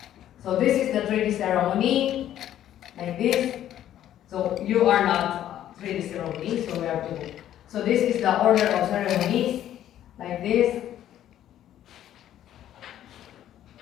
So this is the 3D ceremony, like this. So you are not 3D ceremony, so we have to. So this is the order of ceremonies, like this.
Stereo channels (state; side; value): quieter; right; 11.7 dB